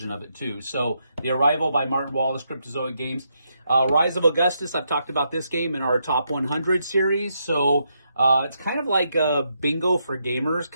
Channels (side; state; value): both; inverted; correlation -0.80